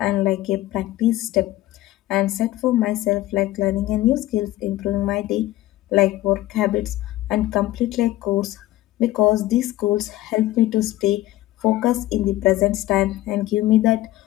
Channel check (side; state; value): right; quieter; 15.9 dB